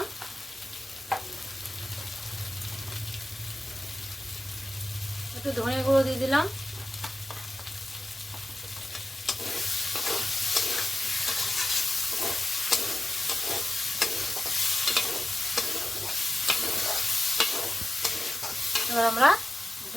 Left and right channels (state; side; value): normal; both; correlation 0.94